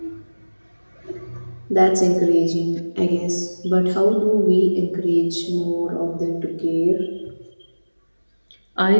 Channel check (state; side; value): inverted; both; correlation -1.00